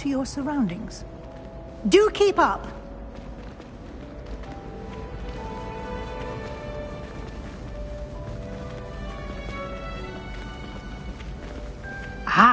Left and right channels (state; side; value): identical; both; correlation 1.00